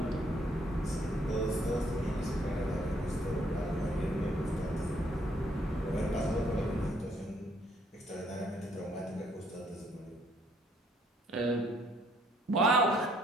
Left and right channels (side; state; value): both; normal; correlation 0.67